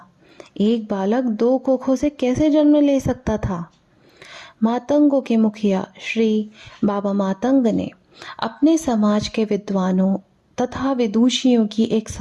एक बालक दो कोखों से कैसे जन्म ले सकता था? मातंगों के मुखिया श्री बाबा मातंग ने अपने समाज के विद्वानों तथा विदुषियों की एक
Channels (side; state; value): both; identical; correlation 1.00